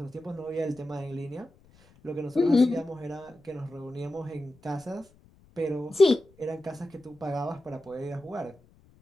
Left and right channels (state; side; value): noise; left; rumble, 29 dB below the sound